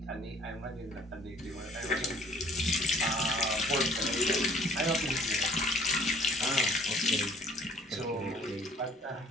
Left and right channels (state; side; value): normal; both; correlation 0.55